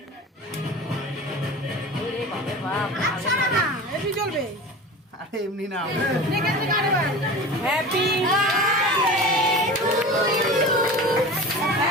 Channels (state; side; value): normal; both; correlation 0.34